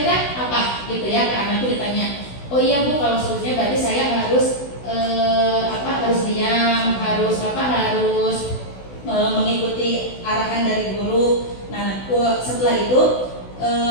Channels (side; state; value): right; late; 16 ms